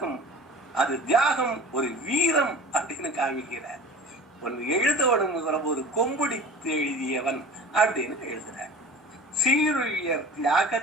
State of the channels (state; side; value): normal; both; correlation 0.40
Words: அது தியாகம் ஒரு வீரம் அப்படின்னு காமிக்கிறார். ஒன்னு எழுதவனுங்கிற ஒரு கொம்புடித்து எழுதியவன் அப்படின்னு எழுதுறார். சீருயர்